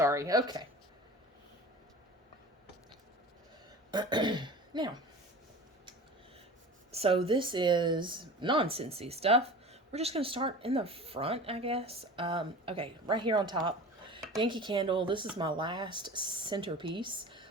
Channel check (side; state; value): both; normal; correlation 0.37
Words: Okay. Now, so this is non-Scentsy stuff. We're just going to start in the front, I guess. Okay, right here on top, Yankee Candle. This is my last centerpiece